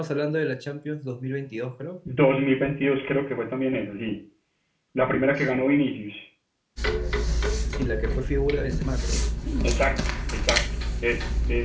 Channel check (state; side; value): identical; both; correlation 1.00